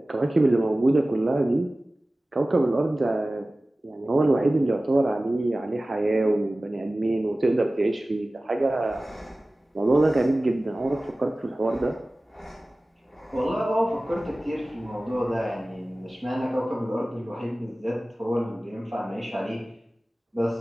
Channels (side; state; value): both; normal; correlation 0.97